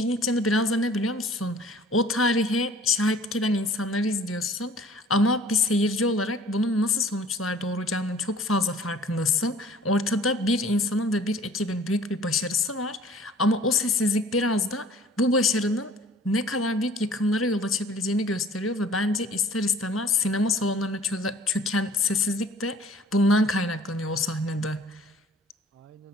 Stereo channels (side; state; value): both; normal; correlation 0.50